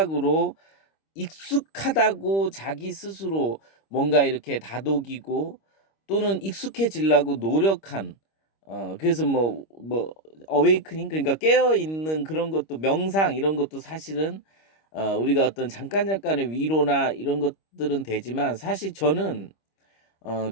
익숙하다고 자기 스스로 뭔가 이렇게 다독이고 또는 익숙해지려고 노력한 그래서 어웨이크닝 그러니까 깨어 있는 그런 것도 명상 이런 것도 사실은 우리가 어떤 잠깐 잠깐의 위로나 이런 것들은 되지만 사실 저는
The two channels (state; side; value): late; right; 25 ms